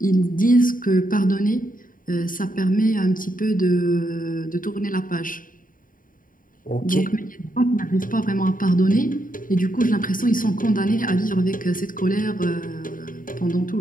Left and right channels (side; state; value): right; late; 0.40 ms